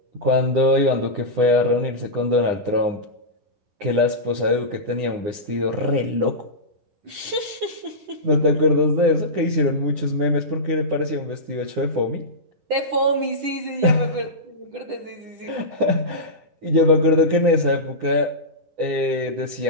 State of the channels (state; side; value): late; left; 10 ms